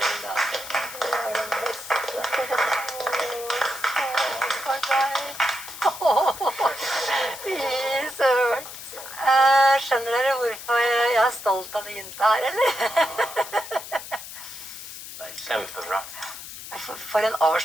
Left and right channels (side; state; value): left; noise; hiss, 12 dB below the sound